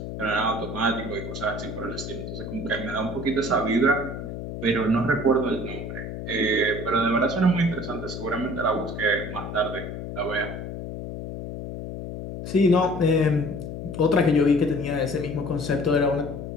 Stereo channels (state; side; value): noise; left; hum, 7 dB below the sound